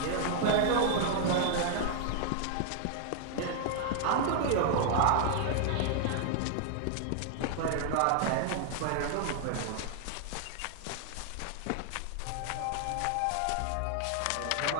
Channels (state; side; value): different; both; correlation 0.00